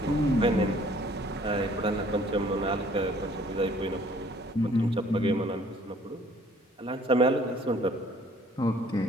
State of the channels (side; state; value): both; normal; correlation 0.57